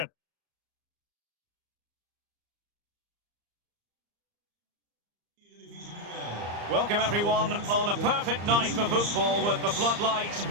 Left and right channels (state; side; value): late; left; 34 ms